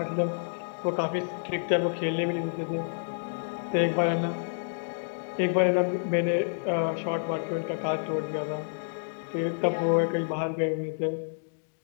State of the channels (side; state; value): right; silent; digital silence